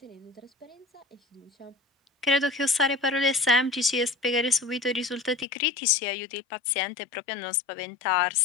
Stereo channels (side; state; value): right; drops out; at 5.5 s